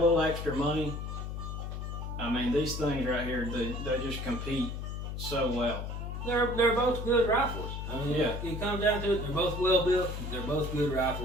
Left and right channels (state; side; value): noise; left; hum, 5 dB below the sound